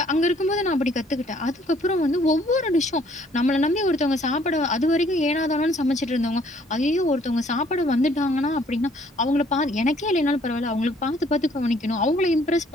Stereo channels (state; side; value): normal; both; correlation 0.61